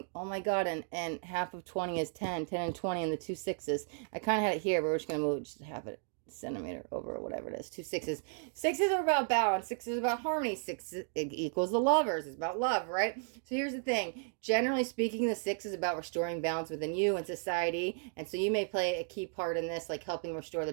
Oh my God. And half of 20 is 10. 10 and 20 and the 2 6s. I kind of had it here, but we're just going to move just half it centimeter over or whatever it is. 2 6s. 6s are about balance. 6 is about harmony. 6 equals the lovers. It's about love, right? So here's the thing. Generally speaking, the 6 is about restoring balance within you and society. And so you may play a key part in this, like helping restore the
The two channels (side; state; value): left; silent; 55 dB below the other